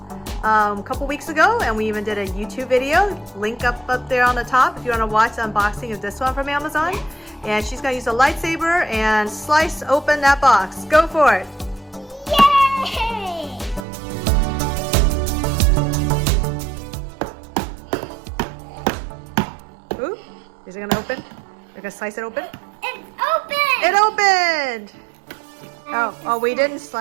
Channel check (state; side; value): drops out; left; at 13.9 s